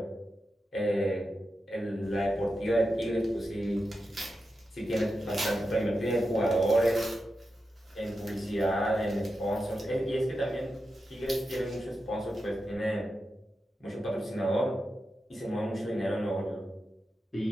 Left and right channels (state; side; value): normal; both; correlation 0.89